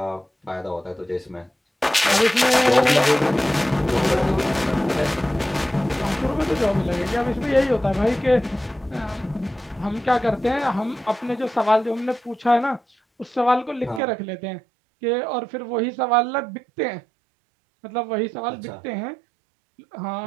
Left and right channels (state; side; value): drops out; left; at 14.0 s